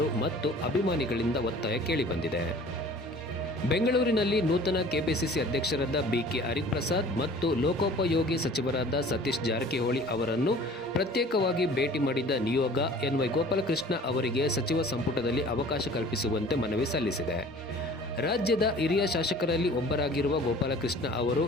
ಮತ್ತು ಅಭಿಮಾನಿಗಳಿಂದ ಒತ್ತಾಯ ಕೇಳಿಬಂದಿದೆ. ಬೆಂಗಳೂರಿನಲ್ಲಿ ನೂತನ ಕೆಪಿಸಿಸಿ ಅಧ್ಯಕ್ಷರಾದ ಬಿಕೆ ಹರಿಪ್ರಸಾದ್ ಮತ್ತು ಲೋಕೋಪಯೋಗಿ ಸಚಿವರಾದ ಸತೀಶ್ ಜಾರಕಿಹೊಳಿ ಅವರನ್ನು ಪ್ರತ್ಯೇಕವಾಗಿ ಭೇಟಿ ಮಾಡಿದ ನಿಯೋಗ ಎನ್ ವೈ ಗೋಪಾಲಕೃಷ್ಣ ಅವರಿಗೆ ಸಚಿವ ಸಂಪುಟದಲ್ಲಿ ಅವಕಾಶ ಕಲ್ಪಿಸುವಂತೆ ಮನವಿ ಸಲ್ಲಿಸಿದೆ. ರಾಜ್ಯದ ಹಿರಿಯ ಶಾಸಕರಲ್ಲಿ ಒಬ್ಬರಾಗಿರುವ ಗೋಪಾಲಕೃಷ್ಣ ಅವರು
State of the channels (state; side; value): normal; both; correlation 0.47